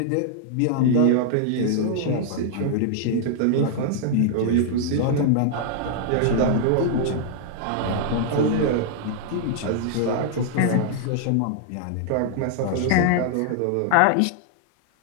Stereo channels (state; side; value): different; both; correlation -0.01